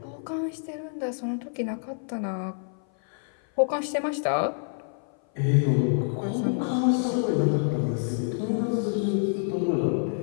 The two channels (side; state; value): right; silent; 56 dB below the other